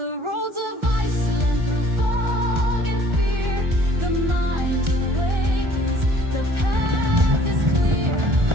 roads of Iceland, through fog and fear, the mind awakens, the path is clear.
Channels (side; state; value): left; late; 1.4 ms